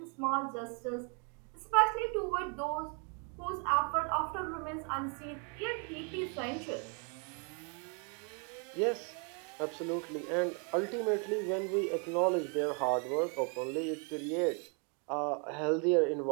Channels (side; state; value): left; quieter; 37.8 dB